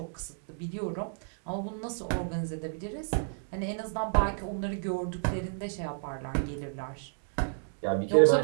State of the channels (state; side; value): silent; left; digital silence